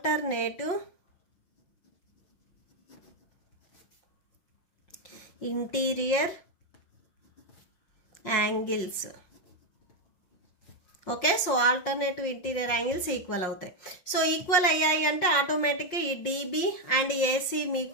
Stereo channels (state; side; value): late; right; 5.6 ms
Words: interior angles. Okay, so alternative interior angles equal అవుతాయి. So equal అయ్యాయి అంటే ఆటోమేటిక్గా ఈ డిబి అండ్ ఏసీ